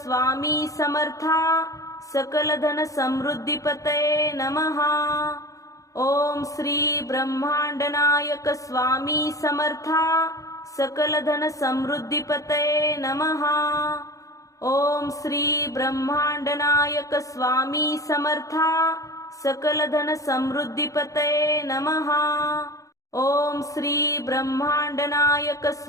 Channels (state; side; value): late; right; 0.16 ms